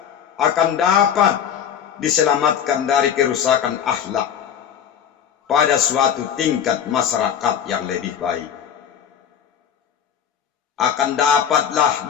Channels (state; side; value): quieter; right; 8.6 dB